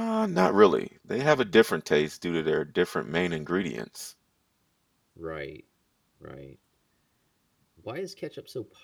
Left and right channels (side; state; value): both; identical; correlation 1.00